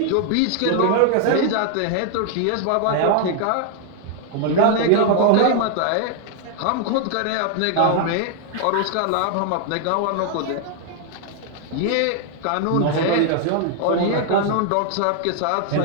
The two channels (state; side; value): different; both; correlation 0.00